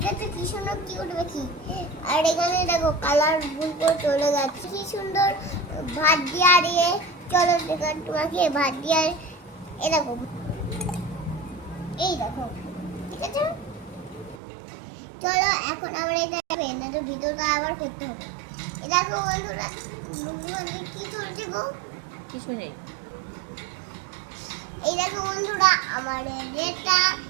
কি সুন্দর কিউট পাখি। আর এখানে দেখো কালার ফুল করে চলে যাচ্ছে, কি সুন্দর ভাত দিয়ে। আর চলো দেখো তোমাকে ভাত দিয়ে। এই দেখো, এই দেখো, ঠিক আছে? চলো এখন আমরা এটা তো ভিডিওটা আবার করতে হবে। দেখো বন্ধুরা, কি চলছে গো? কিছু নেই। এই দেখো বন্ধুরা, আমার এটা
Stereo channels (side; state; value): left; drops out; at 14.4 s